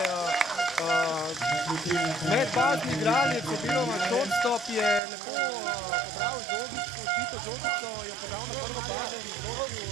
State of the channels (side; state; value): left; drops out; at 5.0 s